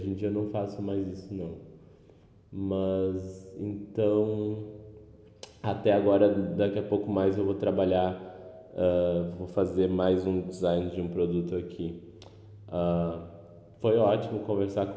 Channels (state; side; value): identical; both; correlation 1.00